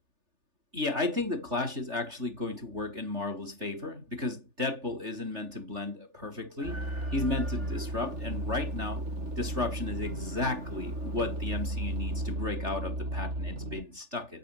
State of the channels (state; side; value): late; left; 3.4 ms